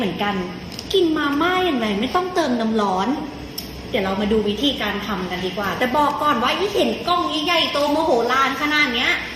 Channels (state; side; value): identical; both; correlation 1.00